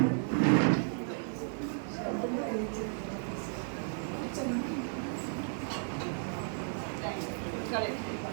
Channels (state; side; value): silent; left; 55 dB below the other